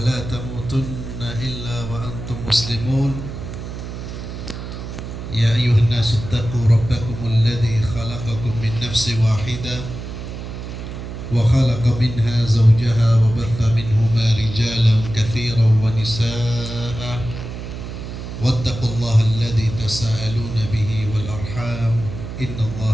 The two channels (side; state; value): right; noise; hum, 9 dB below the sound